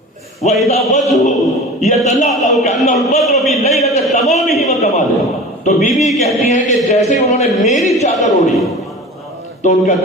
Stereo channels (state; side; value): normal; both; correlation 0.36